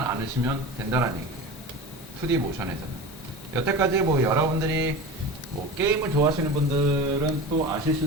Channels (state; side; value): normal; both; correlation 0.31